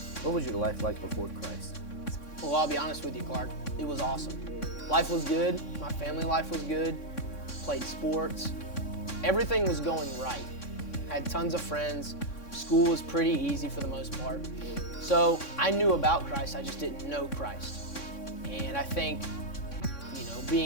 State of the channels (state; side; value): late; right; 3.6 ms